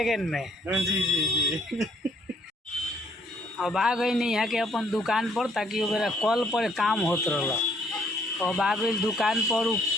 में। जी जी जी अब आ गई नहीं यहाँ के अपन दुकान पर, ताकि मेरा कल पर काम होत रहला। अब आ गई दुकान पर, उ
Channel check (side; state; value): both; normal; correlation 0.66